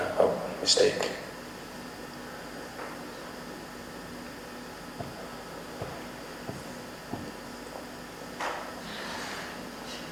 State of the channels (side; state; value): both; identical; correlation 1.00